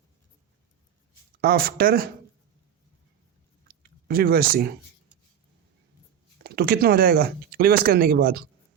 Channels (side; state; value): left; quieter; 9.0 dB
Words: आफ्टर रिवर्सिंग, तो कितना हो जाएगा रिवर्स करने के बाद